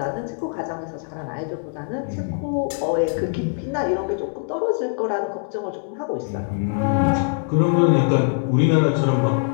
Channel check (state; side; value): silent; right; 60 dB below the other